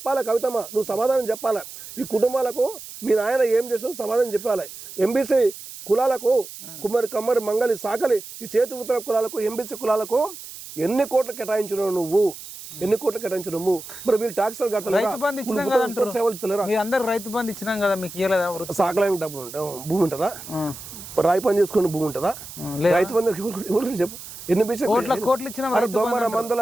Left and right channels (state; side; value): noise; right; hiss, 13 dB below the sound